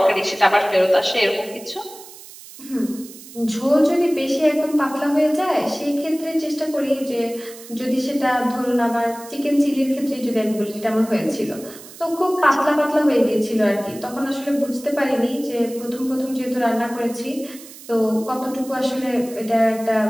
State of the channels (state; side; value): noise; right; hiss, 17 dB below the sound